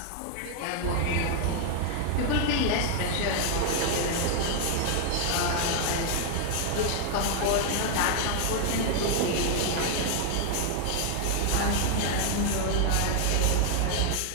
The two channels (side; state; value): both; different; correlation 0.00